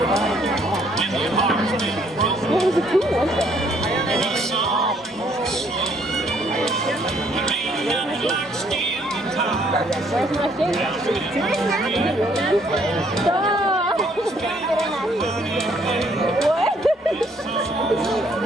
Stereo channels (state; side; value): normal; both; correlation 0.66